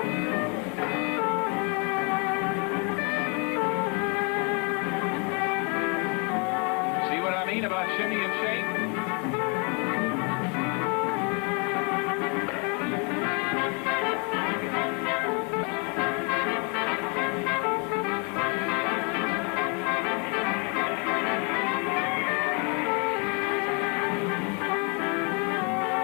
About shimmy and shake.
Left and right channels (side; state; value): right; quieter; 34.8 dB